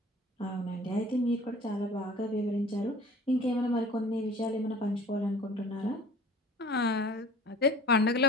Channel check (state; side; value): normal; both; correlation 0.45